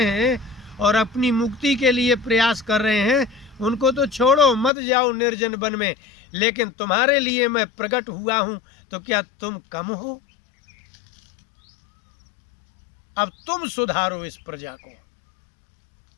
हैं और अपनी मुक्ति के लिए प्रयास कर रहे हैं, उनको तो छोड़ो, मत जाओ निर्जन वन में। लेकिन तुम्हारे लिए मैं प्रकट हुआ हूं, तो क्या तुम कम हो? अब तुम सुधारो इस प्रजा को,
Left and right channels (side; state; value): right; drops out; at 4.7 s